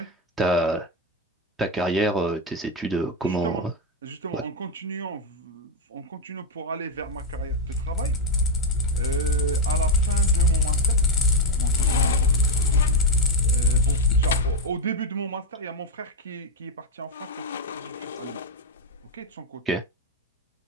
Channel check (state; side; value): normal; both; correlation 0.03